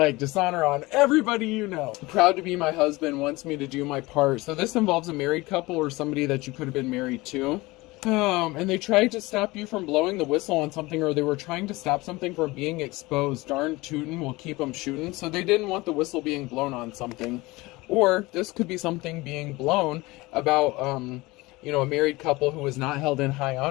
dishonor on everybody you know. Proud to be my husband, wants me to do my part. So this involves a married couple or somebody that you could have been married to. And they tried to stop you from blowing the whistle on something, or they were trying to stop something from being exposed. Darn tootin' will keep them shooting. So they didn't want the whistle being blown on something. Or this could be something being blown about, you know, a married couple who was not held in high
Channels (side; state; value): right; quieter; 21.6 dB